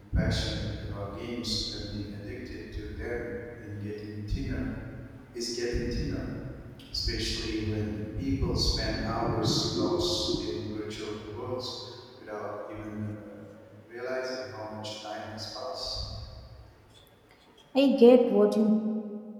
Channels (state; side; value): identical; both; correlation 1.00